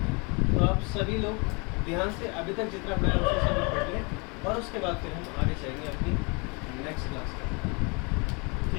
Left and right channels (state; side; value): quieter; right; 31.4 dB